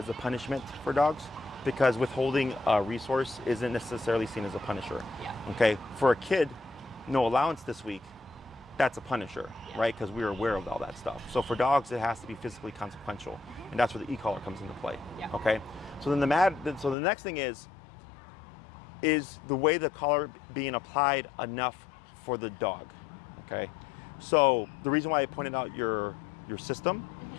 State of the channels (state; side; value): drops out; right; at 16.9 s